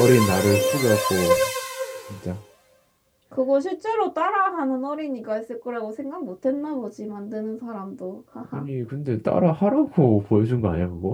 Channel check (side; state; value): both; identical; correlation 1.00